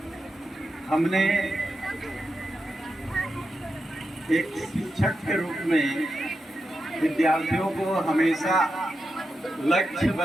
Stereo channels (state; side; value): normal; both; correlation 0.88